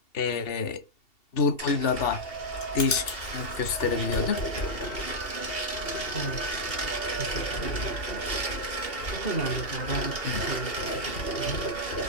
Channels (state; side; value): late; right; 2.7 ms